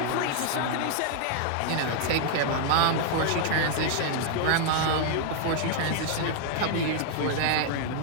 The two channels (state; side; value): different; both; correlation 0.00